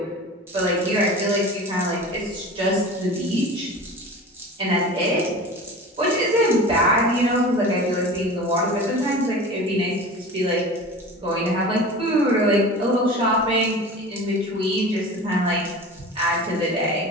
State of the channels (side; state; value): both; normal; correlation 0.36